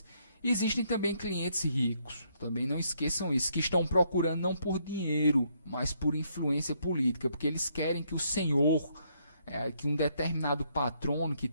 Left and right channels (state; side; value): inverted; both; correlation -0.72